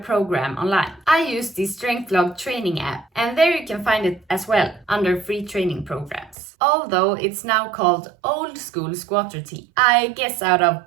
online. I use the StrengthLog training app and there you can find it as well under free training programs. Although it's now called Old School Squat Routine, I guess out of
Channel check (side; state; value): left; drops out; at 6.4 s